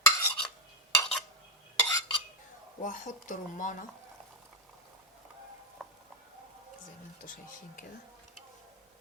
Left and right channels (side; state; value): both; normal; correlation 0.04